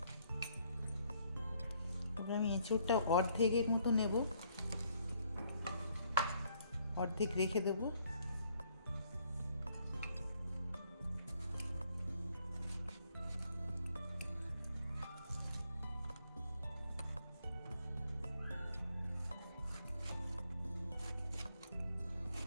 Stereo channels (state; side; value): inverted; both; correlation -0.67